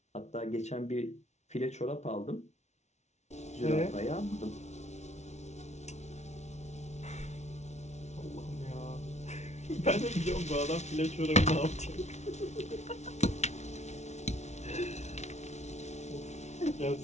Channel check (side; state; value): right; late; 0.32 ms